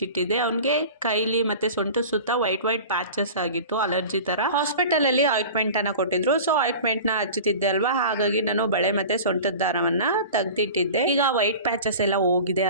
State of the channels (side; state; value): both; inverted; correlation -0.37